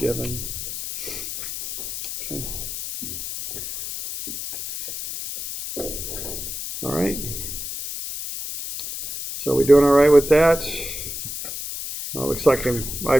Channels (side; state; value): left; noise; hiss, 7 dB below the sound